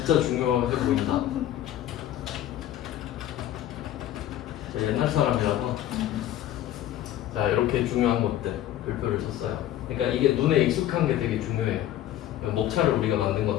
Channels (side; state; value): right; quieter; 12.6 dB